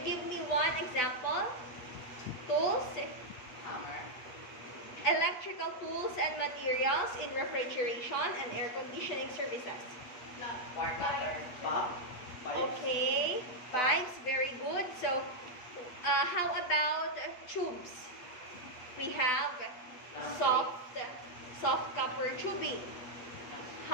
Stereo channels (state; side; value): late; right; 8.6 ms